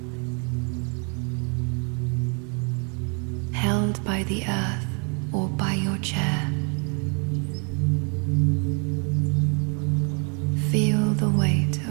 held by the earth or by your chair. Feel the weight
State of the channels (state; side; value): quieter; left; 38.2 dB